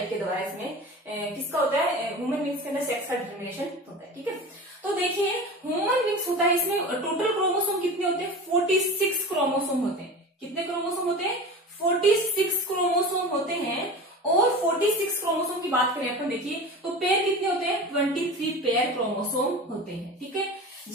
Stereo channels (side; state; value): both; normal; correlation 0.33